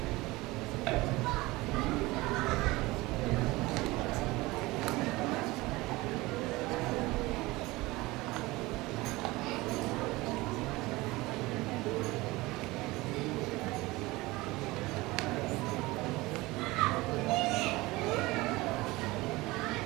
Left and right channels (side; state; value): left; quieter; 21.0 dB